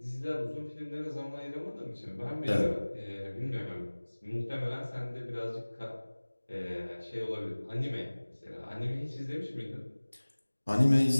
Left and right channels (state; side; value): inverted; both; correlation -1.00